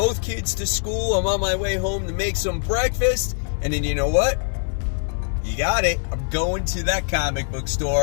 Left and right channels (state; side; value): silent; right; digital silence